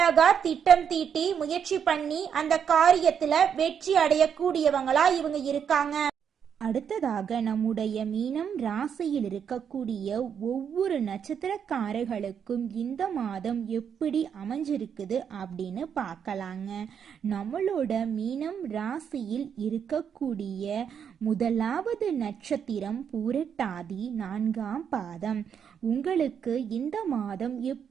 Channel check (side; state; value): left; quieter; 7.7 dB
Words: திட்டம் தீட்டி முயற்சி பண்ணி அந்த காரியத்துல வெற்றி அடையக்கூடியவங்களா இவங்க இருக்காங்க. அடுத்ததாக நம்முடைய மீனம் ராசியில் இருக்கக்கூடிய ஒவ்வொரு நட்சத்திரக்காரர்களுக்கும் இந்த மாதம் எப்படி அமைஞ்சிருக்குது அப்படின்னு பார்க்கலாங்க. நம்மளோட மீனம் ராசியில் இருக்கக்கூடிய முதலாவது நட்சத்திரம் பூரட்டாதி 4ஆம் பாதம். உங்களுக்கு இந்த மாதம்